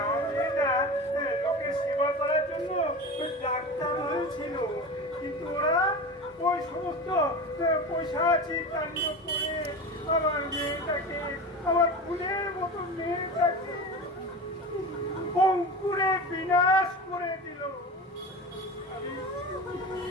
মেয়েটা লোকের সেবা করার জন্য ডাক্তার হয়েছিল, কিন্তু ওরা ওই সমস্ত পৈশাচিক কাণ্ড করে আমার মেয়েটাকে, আমার ফুলের মতো মেয়েটাকে অঙ্কুরে বিনাশ করে দিল।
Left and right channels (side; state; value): both; normal; correlation 0.29